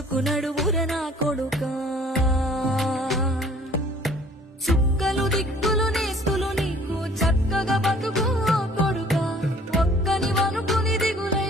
నా కొడుకా. చుక్కలు దిక్కులు నేస్తులు నీకు చక్కగా బతుకు కొడుకా. ఒక్కని వనుకుని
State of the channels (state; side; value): normal; both; correlation 0.54